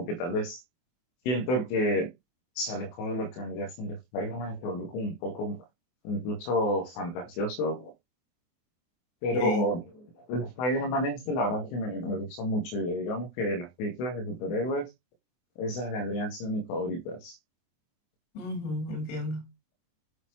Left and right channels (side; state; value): right; late; 24 ms